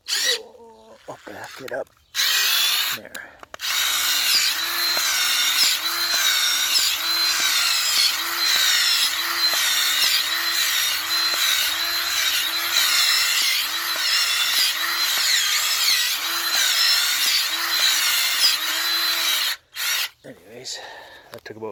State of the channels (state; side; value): identical; both; correlation 1.00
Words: I'll back it up. There. Anyways, that took